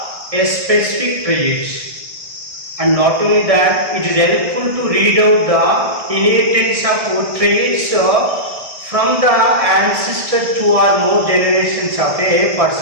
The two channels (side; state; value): left; late; 1.6 ms